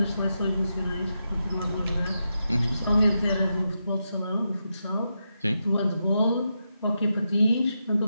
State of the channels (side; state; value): both; inverted; correlation -0.86